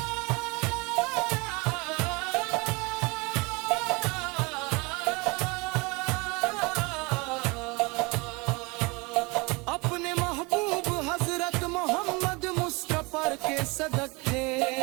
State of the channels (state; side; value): quieter; left; 26.8 dB